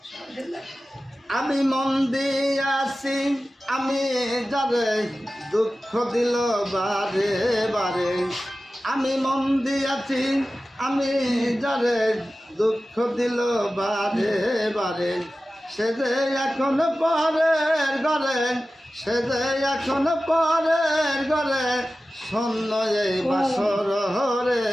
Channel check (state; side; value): normal; both; correlation 0.95